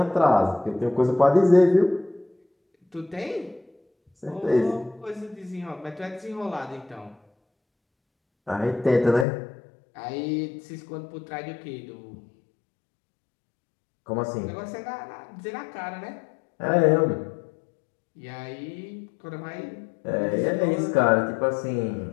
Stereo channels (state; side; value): drops out; right; at 9.2 s